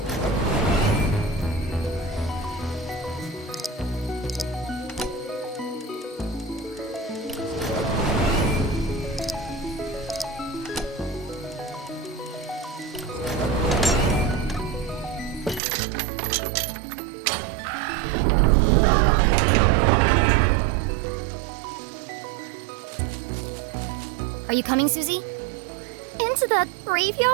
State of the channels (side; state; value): left; drops out; at 15.6 s